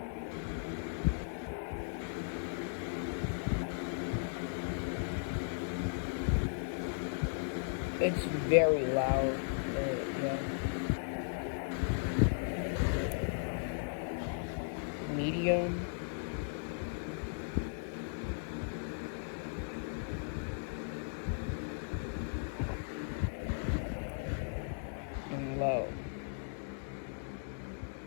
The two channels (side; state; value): right; silent; digital silence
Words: It's very loud, yeah. Medium. And low.